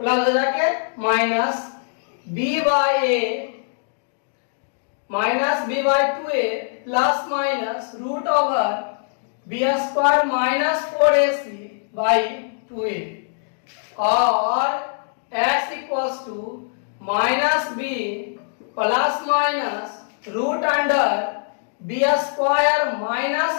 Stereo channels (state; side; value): silent; right; digital silence